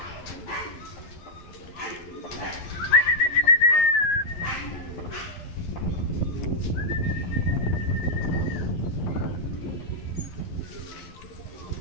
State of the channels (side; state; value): right; late; 11 ms